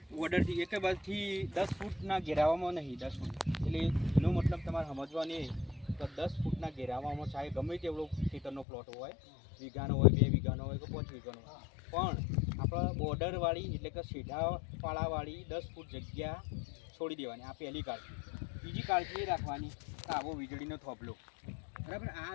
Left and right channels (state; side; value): drops out; right; at 8.7 s